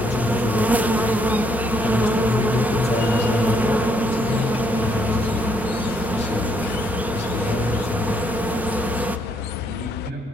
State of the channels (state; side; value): noise; right; rumble, 24 dB below the sound